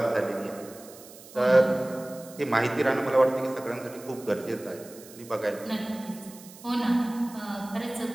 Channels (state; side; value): noise; right; hiss, 19 dB below the sound